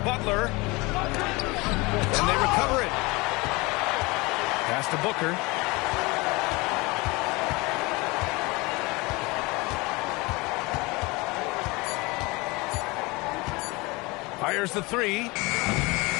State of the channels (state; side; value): quieter; right; 24.5 dB